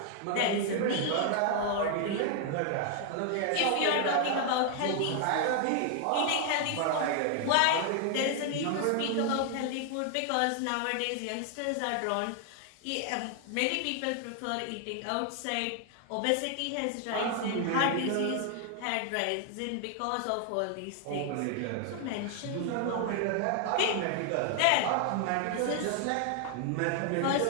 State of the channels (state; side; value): different; both; correlation 0.00